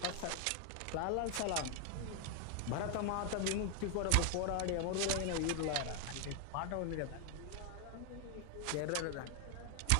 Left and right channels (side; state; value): both; different; correlation 0.00